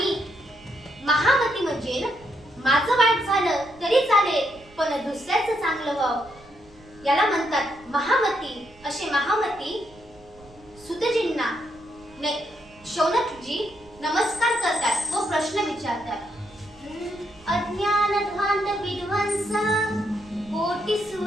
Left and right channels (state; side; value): noise; right; rumble, 25 dB below the sound